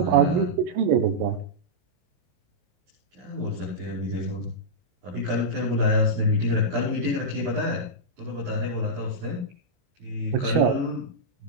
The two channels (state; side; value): late; left; 25 ms